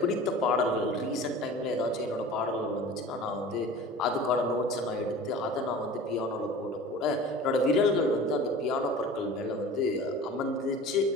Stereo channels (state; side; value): normal; both; correlation 0.40